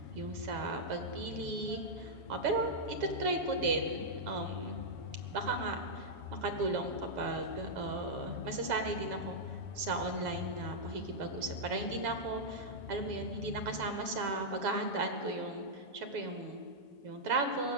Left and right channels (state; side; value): late; left; 7.2 ms